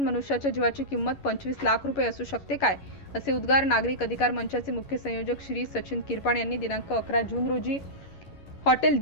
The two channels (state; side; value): late; right; 11 ms